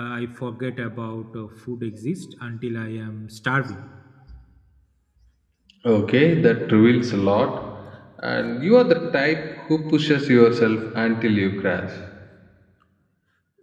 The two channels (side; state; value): both; identical; correlation 1.00